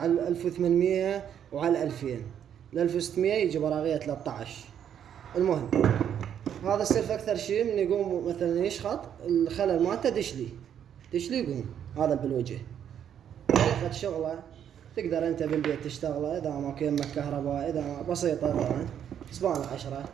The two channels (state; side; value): quieter; left; 9.2 dB